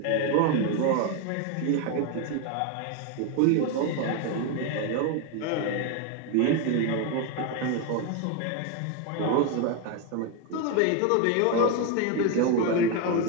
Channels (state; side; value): different; both; correlation 0.01